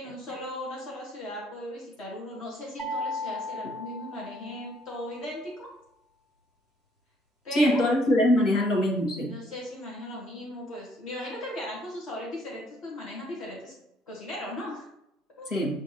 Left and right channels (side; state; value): both; normal; correlation 0.64